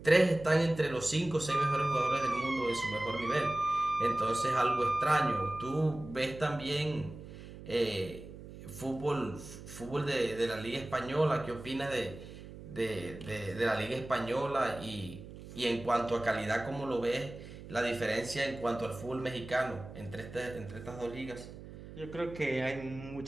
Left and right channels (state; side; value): noise; right; hum, 14 dB below the sound